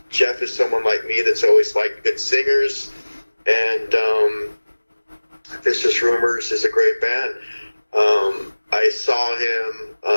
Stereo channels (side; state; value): both; inverted; correlation -1.00